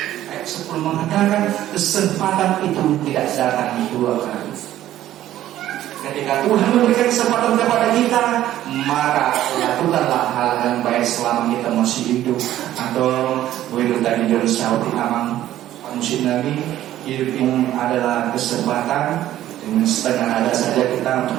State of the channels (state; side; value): quieter; left; 13.2 dB